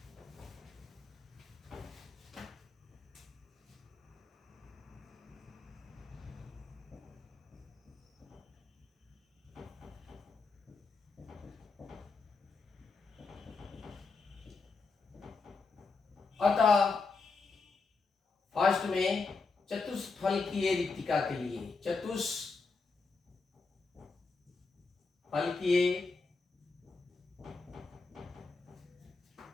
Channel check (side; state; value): right; quieter; 4.3 dB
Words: अतः फर्स्ट में चतुष्फलकीय रिक्तिका के लिए, चतुष्फलकीय